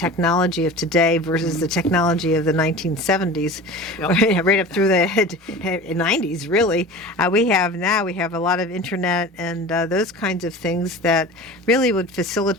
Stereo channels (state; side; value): normal; both; correlation 0.36